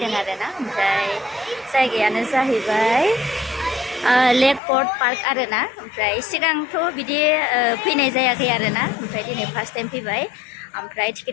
आरोना ओमफ्राय जायगायानो जाहैबाय लेक पर्ट पार्क आरोना ओमफ्राय सिगांथ' बिदि फैनाय जायाखै आरोना ओमफ्राय दिनै फार्स्ट टाइम फैबाय ओमफ्राय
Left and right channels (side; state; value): right; drops out; at 4.6 s